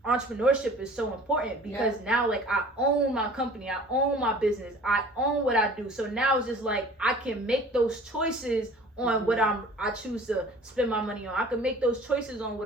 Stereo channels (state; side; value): normal; both; correlation 0.47